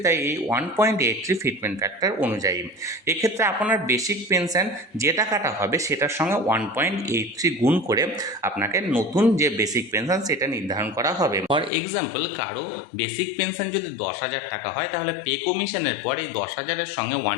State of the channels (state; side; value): drops out; right; at 11.7 s